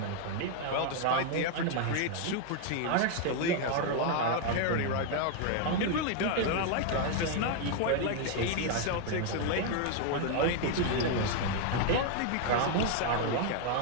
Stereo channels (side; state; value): both; different; correlation 0.00